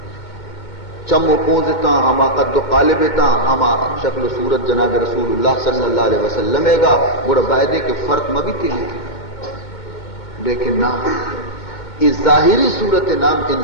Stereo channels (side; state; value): right; late; 2.2 ms